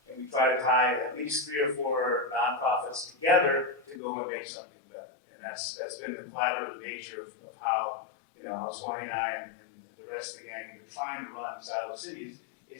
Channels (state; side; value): drops out; right; at 4.0 s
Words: and we try to tie at least 3 or 4 nonprofits together to go and make something better. And that's been the collaborative nature of how how Swanee and I and the rest of the gang have been trying to run Silo Cities,